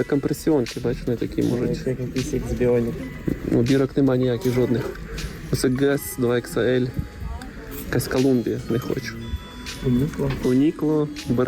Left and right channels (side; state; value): both; identical; correlation 1.00